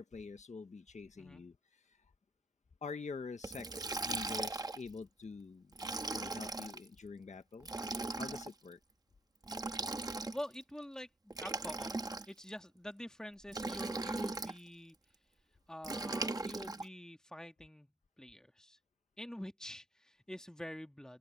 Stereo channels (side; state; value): both; normal; correlation 0.65